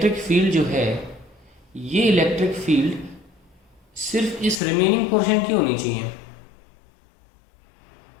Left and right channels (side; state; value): right; drops out; at 4.6 s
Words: फील्ड जो है, ये इलेक्ट्रिक फील्ड सिर्फ इस रिमेनिंग पोर्शन की होनी चाहिए.